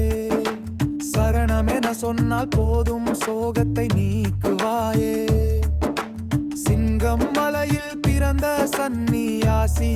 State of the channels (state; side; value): identical; both; correlation 1.00